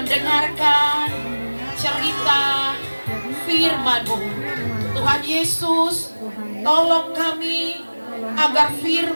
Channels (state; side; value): inverted; both; correlation -1.00